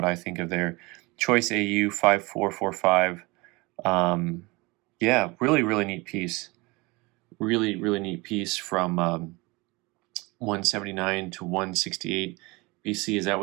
I think of there. Choice AU 5445. Yeah, really neat piece. Really neat piece from 179 to 168 BC. Is that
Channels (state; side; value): quieter; left; 24.9 dB